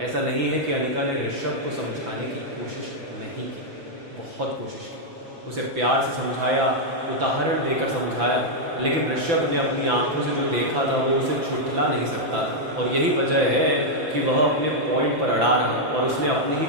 ऐसा नहीं है कि अनिका ने ऋषभ को समझाने की कोशिश नहीं की, बहुत कोशिश की, उसे प्यार से समझाया, उदाहरण देकर समझाया, लेकिन ऋषभ ने अपनी आंखों से जो देखा था वो उसे छुटला नहीं सकता था। और यही वजह है कि वह अपने पॉइंट पर अड़ा रहा और उसने अपने ही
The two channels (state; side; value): late; left; 6.0 ms